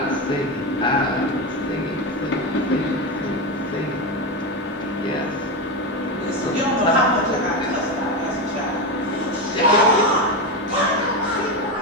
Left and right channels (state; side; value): normal; both; correlation 0.15